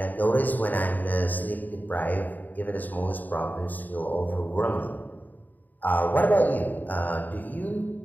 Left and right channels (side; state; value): right; late; 0.084 ms